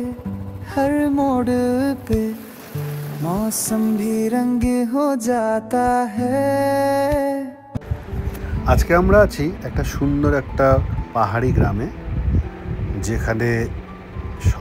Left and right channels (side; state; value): both; identical; correlation 1.00